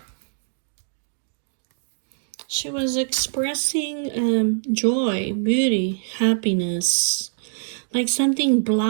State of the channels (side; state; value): left; silent; digital silence